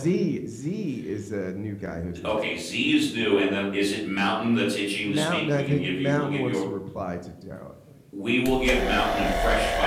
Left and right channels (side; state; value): both; identical; correlation 1.00